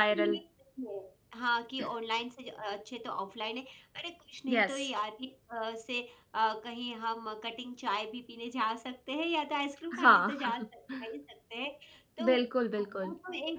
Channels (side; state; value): both; identical; correlation 1.00